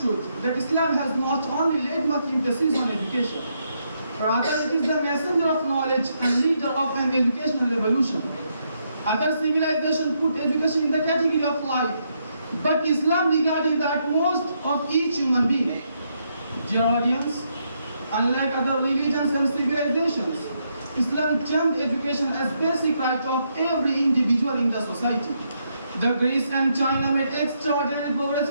truth that Islam has not only laid much emphasis on education, rather it is the messenger of knowledge and leader of an educational revolution. Other civilizations put education in the category of life, but Islam regarded the utmost of each human being. Dear audience, unlike other religions and civilizations, Islam termed education as basic right of every individual in the society. The Greece and China made extraordinary progress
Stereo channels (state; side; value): inverted; both; correlation -0.78